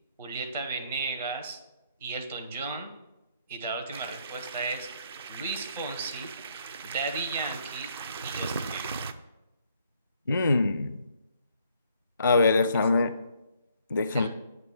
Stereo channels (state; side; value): inverted; both; correlation -0.68